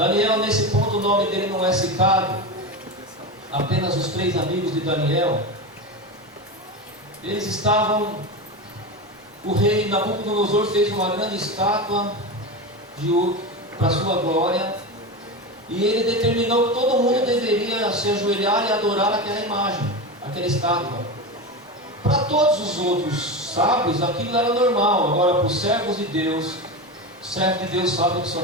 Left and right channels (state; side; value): normal; both; correlation 0.21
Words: nesse ponto o nome dele não é citado, apenas os 3 amigos de Daniel. Eles estavam, o rei Nabucodonosor fez uma grande estátua de ouro para sua glória, e ele determinou que todo mundo deveria se ajoelhar e adorar aquela imagem, aquela estátua. Para todos os outros sábios aquilo era normal, agora para os servos de Deus, o servo de Deus sabe que só